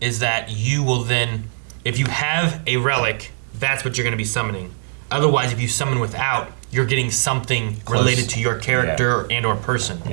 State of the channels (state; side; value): silent; left; digital silence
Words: is that you will then, if you have a relic, that's what you're going to be summoning. Otherwise, if you summon without, you're getting something related to your character and or person.